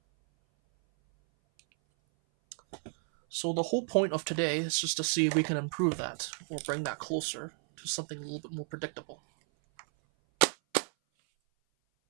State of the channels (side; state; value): left; silent; 56 dB below the other